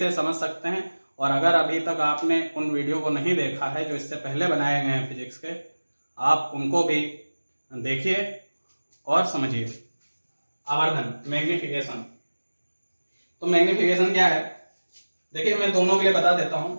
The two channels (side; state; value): both; inverted; correlation -1.00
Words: समझ सकते हैं, और अगर अभी तक आपने उन वीडियो को नहीं देखा है जो इससे पहले बनाए गए हैं फिजिक्स के, आप उनको भी देखिए और समझिए। आवर्धन, मैग्निफिकेशन। तो मैग्निफिकेशन क्या है, देखिए मैं दोनों के लिए बता देता हूं।